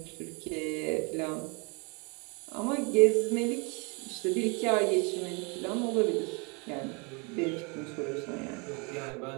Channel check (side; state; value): left; quieter; 31.6 dB